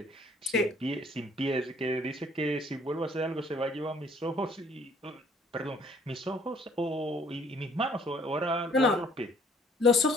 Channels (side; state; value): both; normal; correlation 0.60